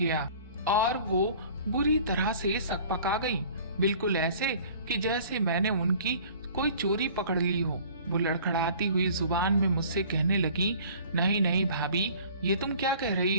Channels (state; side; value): inverted; both; correlation -0.49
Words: और वो बुरी तरह से सकपका गई, बिल्कुल ऐसे कि जैसे मैंने उनकी कोई चोरी पकड़ ली हो। वो लड़खड़ाती हुई जुबान में मुझसे कहने लगी, नहीं नहीं भाभी, ये तुम क्या कह रही